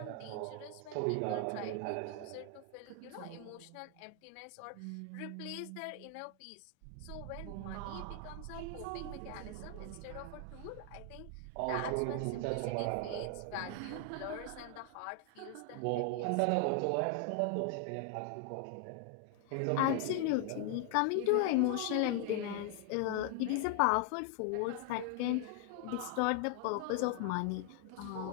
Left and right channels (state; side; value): different; both; correlation 0.00